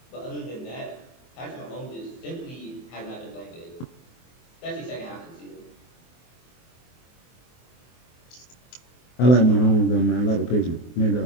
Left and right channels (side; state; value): right; late; 24 ms